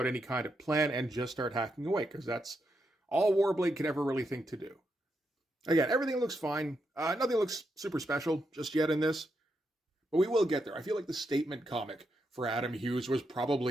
any kind of plan and just start hacking away, because that's all Warblade could ever really think to do. Again, everything looks fine. Nothing looks super special just yet in this, but we will get there. I feel like the statement comic for Adam Hughes was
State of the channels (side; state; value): both; normal; correlation 0.82